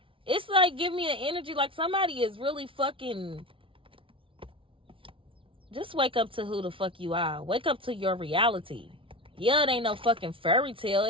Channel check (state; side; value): late; left; 0.25 ms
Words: It's like, give me an energy like somebody is really fucking... Just wake up to who the fuck you are. Wake up to your reality. Yeah, it ain't no fucking fairy tale.